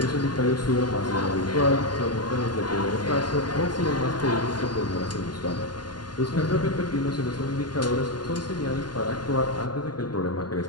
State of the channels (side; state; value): right; late; 0.71 ms